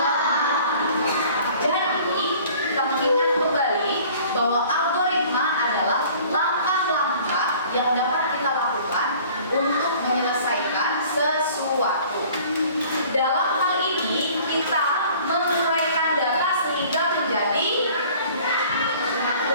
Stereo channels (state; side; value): inverted; both; correlation -0.50